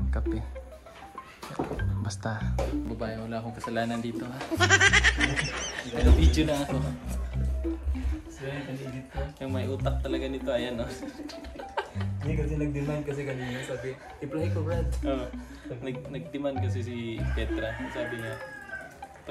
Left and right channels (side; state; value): both; identical; correlation 1.00